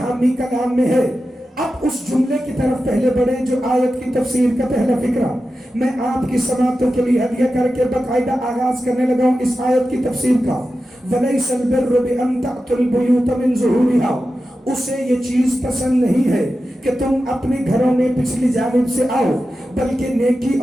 کلام میں ہے۔ اب اس جملے کی طرف پہلے بڑھیں جو آیت کی تفسیر کا پہلا فقرہ میں آپ کی سماعتوں کے لیے ہدیہ کر کے باقاعدہ آغاز کرنے لگا ہوں اس آیت کی تفسیر کا۔ وَلَيْسَ الْبِرُّ بِأَن تَأْتُوا الْبُيُوتَ مِن ظُهُورِهَا، اسے یہ چیز پسند نہیں ہے کہ تم اپنے گھروں میں پچھلی جانب سے آؤ، بلکہ نیکی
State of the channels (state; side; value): normal; both; correlation 0.92